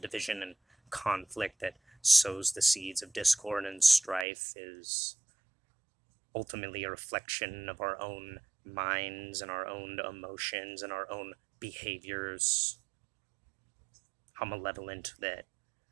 and conflict that sows the seeds of discord and strife is ultimately a reflection of our own minds and our own emotions and our own behaviors. How malevolent that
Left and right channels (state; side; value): drops out; left; at 4.2 s